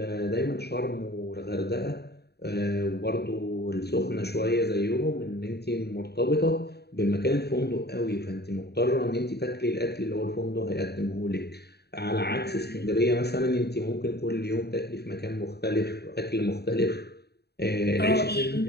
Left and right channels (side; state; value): right; late; 0.48 ms